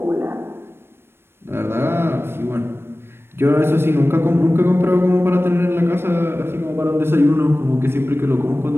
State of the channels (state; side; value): late; left; 0.12 ms